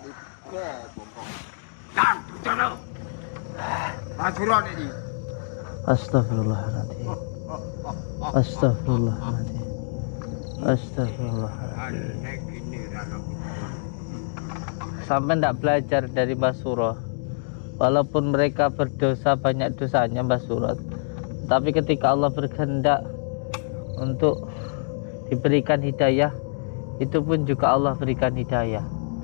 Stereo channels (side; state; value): right; silent; digital silence